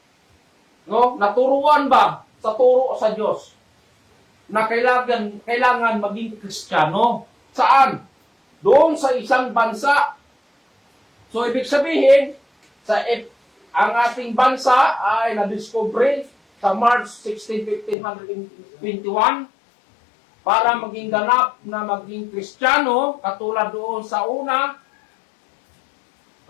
No? Naturuan ba sa turo sa Diyos na kailangan maging Kristiyano? Saan? Doon sa isang bansa. So, ibig sabihin, sa ang ating bansa ay nadiscovery sa March 16, 1521 para maging ganap na maging Kristiyano, katulad doon sa una,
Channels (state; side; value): drops out; right; at 17.9 s